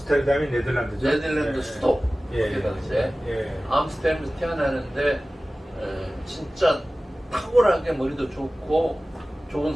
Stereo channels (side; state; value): both; normal; correlation 0.97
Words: 네덜란드죠? 네덜란드 예. 수도 예. 그때 당시에 예. 암스테르담에서 태어나는데 진짜 탁월하게 머리도 좋고 좋은